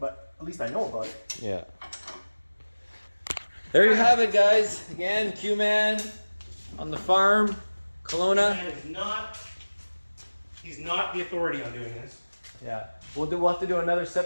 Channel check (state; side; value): inverted; both; correlation -1.00